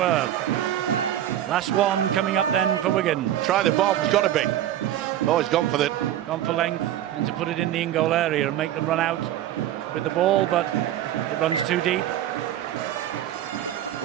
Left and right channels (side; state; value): left; quieter; 12.1 dB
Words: Last one coming up then for Wigan. Try the bomb, it's got to be. Oh, he's gone for the... Gone for length, and to put it in the in-goal area and make them run out with the ball, but it runs too deep.